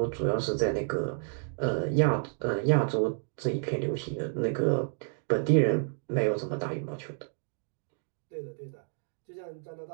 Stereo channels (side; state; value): left; silent; 58 dB below the other